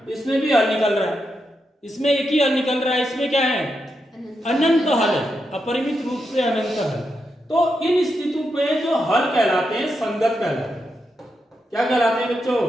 इसमें भी हल निकल रहा है, इसमें एक ही हल निकल रहा है, इसमें क्या है, अनंत हल है, अपरिमित रूप से अनंत हल। तो इन स्थितियों पे जो हल कहलाते हैं संगत कहलाते हैं। क्या कहलाते हैं बच्चों,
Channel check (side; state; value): both; normal; correlation 0.85